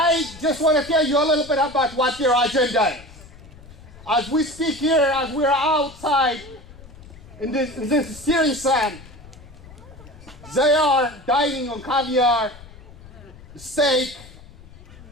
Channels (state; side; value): noise; left; rumble, 20 dB below the sound